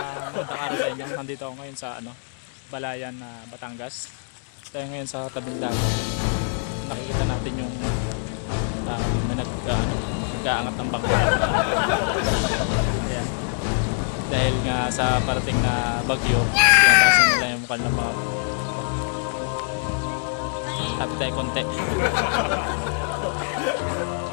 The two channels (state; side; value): silent; right; digital silence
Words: araw sa inyo. Nandito ako ngayon sa Balayan na Batangas. Tayo ngayon sa tabing dagat. Nakikita natin yung may nag-aangat ng bangka. Ayan. Dahil nga sa parating na bagyo, tinatasan nila yung mukha ng mga tapit tayo konti.